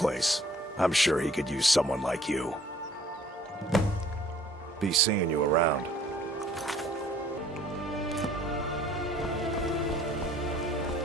I'm sure he could use someone like you. Be seeing you around.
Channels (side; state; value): both; normal; correlation 0.56